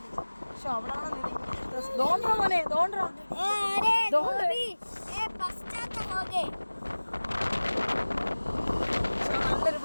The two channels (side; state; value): both; inverted; correlation -1.00